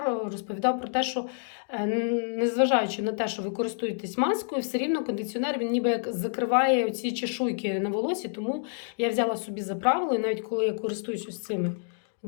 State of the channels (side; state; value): right; silent; 59 dB below the other